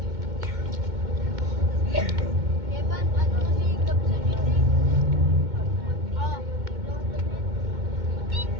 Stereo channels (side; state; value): left; late; 2.2 ms